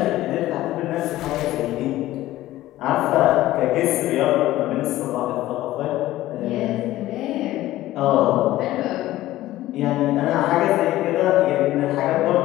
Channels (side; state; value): right; quieter; 15.6 dB